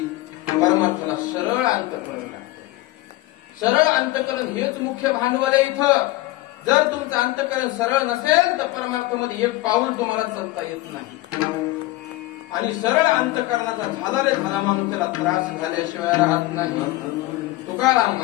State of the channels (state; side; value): quieter; right; 18.7 dB